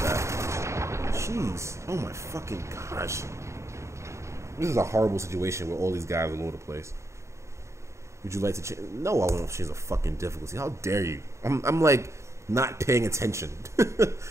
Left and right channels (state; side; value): late; left; 0.14 ms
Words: that. Jeez, oh my fucking gosh. This is a horrible situation where all these guys are all over the place. Would you like to change? No, I won't change the fucking difficulty. How dare you? I'm like not paying attention.